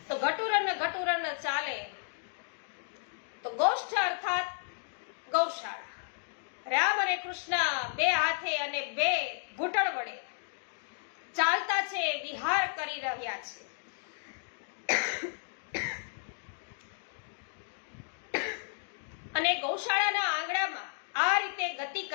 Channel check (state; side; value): silent; right; digital silence